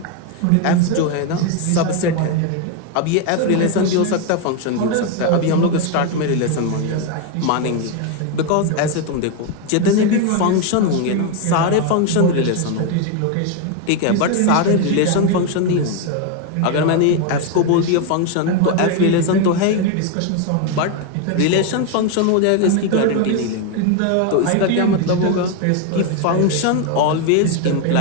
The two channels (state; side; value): different; both; correlation 0.01